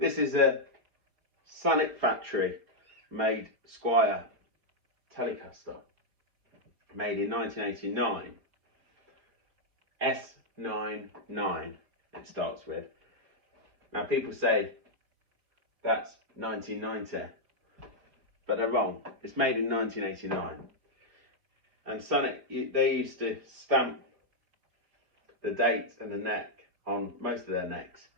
is a Samick factory made Squier telecaster, made in 1989. S99 it starts with. Now people say that's 1990, but they're wrong. It's made in 1989. And Samick, they used to stamp the date and the neck on most of their necks.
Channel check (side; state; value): left; late; 4.5 ms